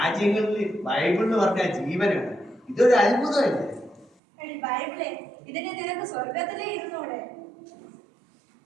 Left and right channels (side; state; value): left; drops out; at 4.1 s